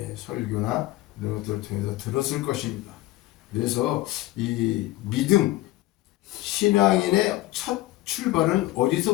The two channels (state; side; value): quieter; right; 17.1 dB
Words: 설교나 이런 것들을 통해서 들었을 것입니다. 그래서 이 믿음, 신앙인의 첫 출발은